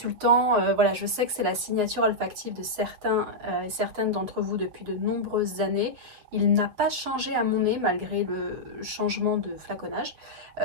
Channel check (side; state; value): left; late; 7.6 ms